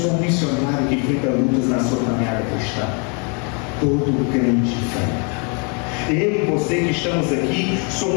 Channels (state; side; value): quieter; right; 36.1 dB